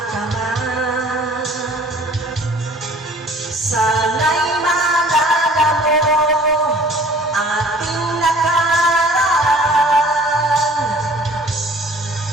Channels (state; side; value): normal; both; correlation 0.51